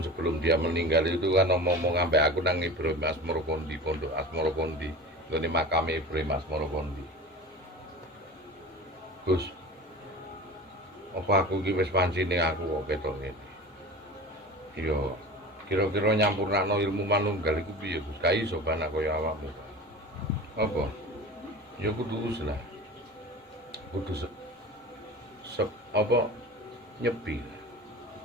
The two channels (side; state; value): both; normal; correlation 0.34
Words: sebelum dia meninggal itu kan ngomong sampai aku nang Ibrahim Asmoro Kondi, Pondok Asmoro Kondi, ngene makame Ibrahim Asmoro Kondi. Gus, apa aku iki wis pancine aku kok ketok ngene. Iya, kira-kira nyampurnakno ilmu manunggal iku piye, Gus? Ka iso anak kaya awakmu. Apa? Ya kudu lah. Kudu apa nyepi.